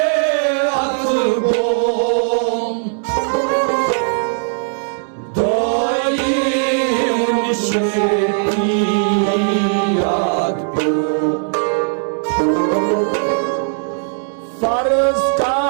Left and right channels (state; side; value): silent; left; 60 dB below the other